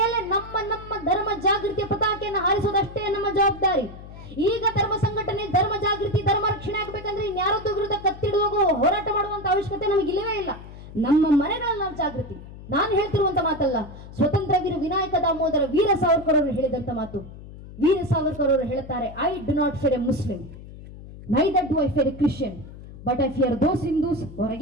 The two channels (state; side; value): noise; left; hum, 15 dB below the sound